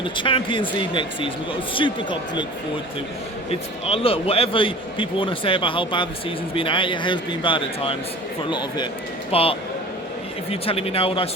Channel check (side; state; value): both; normal; correlation 0.41